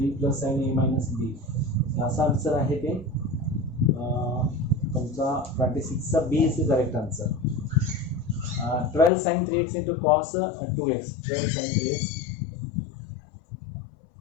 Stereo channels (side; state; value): right; drops out; at 9.1 s